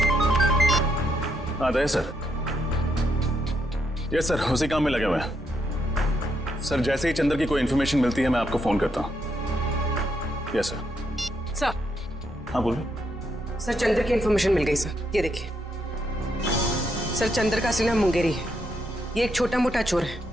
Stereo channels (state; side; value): normal; both; correlation 0.78